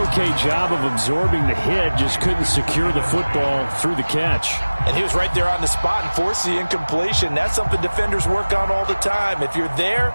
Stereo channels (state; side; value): inverted; both; correlation -1.00